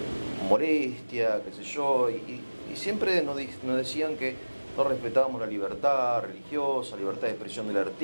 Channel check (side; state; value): both; inverted; correlation -1.00